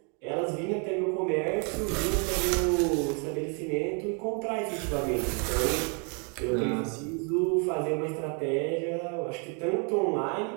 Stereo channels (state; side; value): quieter; left; 37.0 dB